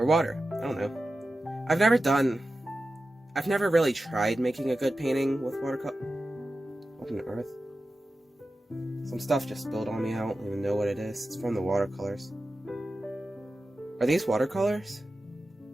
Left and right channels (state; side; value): normal; both; correlation 0.93